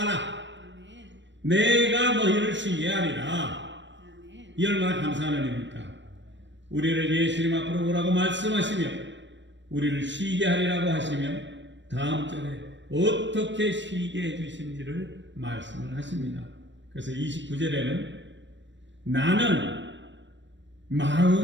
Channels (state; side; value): late; left; 0.53 ms